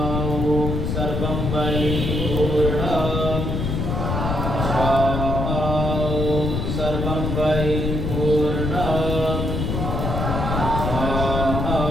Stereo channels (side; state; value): left; noise; rumble, 1 dB below the sound